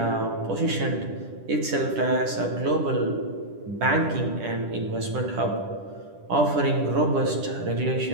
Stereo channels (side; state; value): left; late; 10 ms